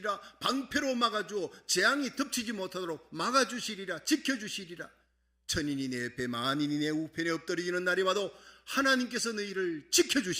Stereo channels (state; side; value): identical; both; correlation 1.00